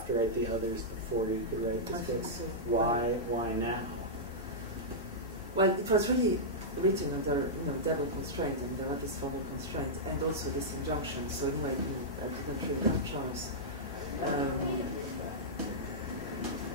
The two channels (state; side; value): normal; both; correlation -0.11